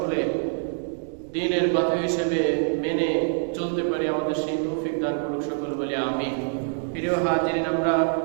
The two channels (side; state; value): left; silent; digital silence